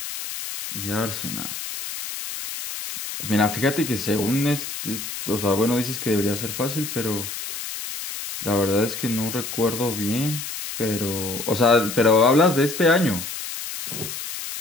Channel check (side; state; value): left; noise; hiss, 7 dB below the sound